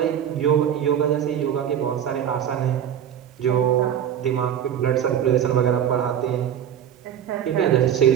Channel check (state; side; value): quieter; left; 9.5 dB